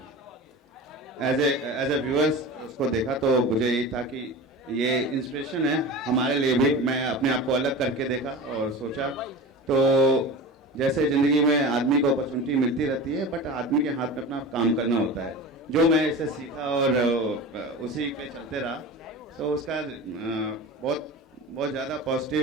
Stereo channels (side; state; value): both; normal; correlation 0.32